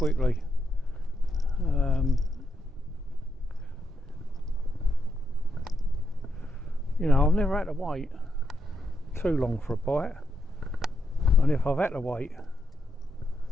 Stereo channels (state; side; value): normal; both; correlation 0.81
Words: You know, I've never had to wait too long for a bite, and if I've had to wait